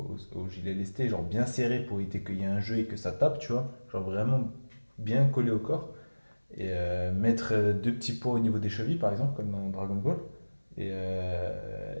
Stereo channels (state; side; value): inverted; both; correlation -1.00